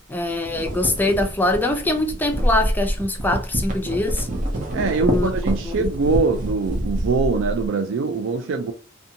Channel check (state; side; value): normal; both; correlation 0.48